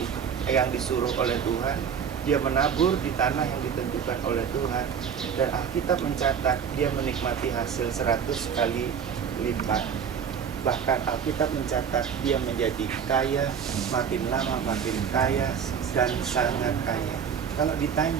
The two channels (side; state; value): left; quieter; 7.4 dB